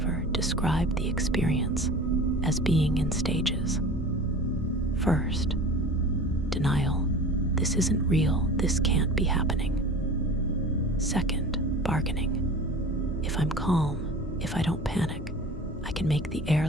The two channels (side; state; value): both; normal; correlation 0.38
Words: described the experience as being in stages. First, denial, this isn't real, this can't be happening. Second, bargaining, if I'm calm, if I don't panic, I can make the air